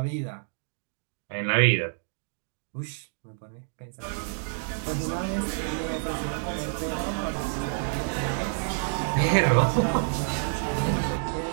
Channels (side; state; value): left; silent; digital silence